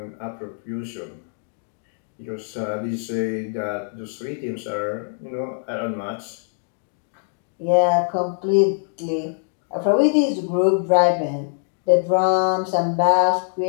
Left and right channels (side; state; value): right; silent; digital silence